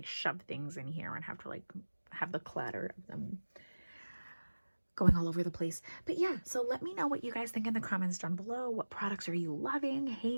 shove things in here and have to like have the clatter of them going all over the place. But yeah, so let me know what you guys think in the comments down below. What products are you loving,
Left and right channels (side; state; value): both; inverted; correlation -1.00